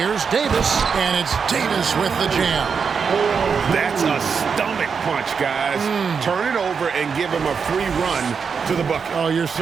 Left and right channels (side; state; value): left; quieter; 6.0 dB